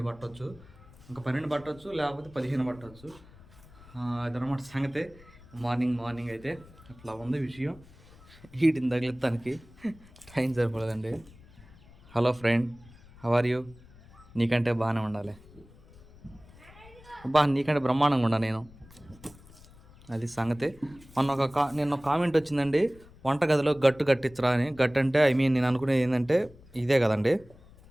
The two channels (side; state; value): left; noise; rumble, 23 dB below the sound